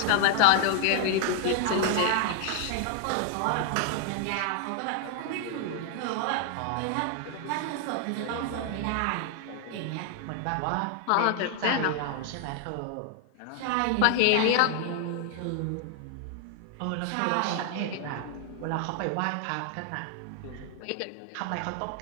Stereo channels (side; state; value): both; different; correlation 0.00